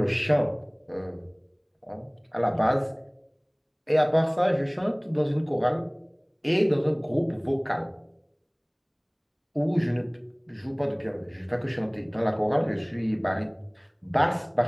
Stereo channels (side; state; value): both; identical; correlation 1.00